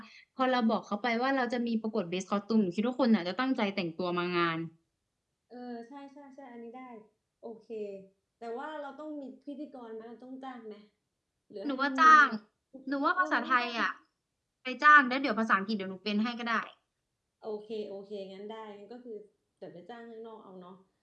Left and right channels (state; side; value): identical; both; correlation 1.00